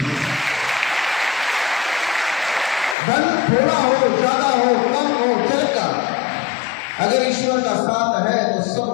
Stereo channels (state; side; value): drops out; right; at 3.0 s